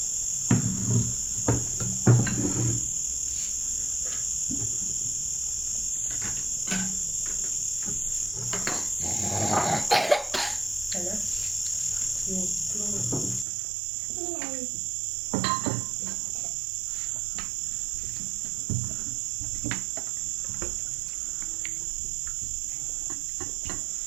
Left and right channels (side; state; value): left; drops out; at 13.5 s